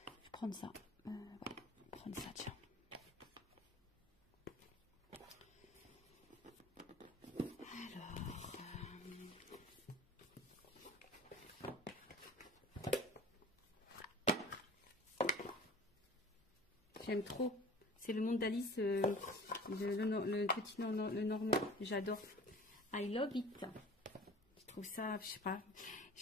prendre ça. Ouais, prendre ça, tiens. J'aime trop. C'est le monde d'Alice, le petit le normand. J'adore. I love it. Je trouve ça, je sais pas.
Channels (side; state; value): both; normal; correlation 0.44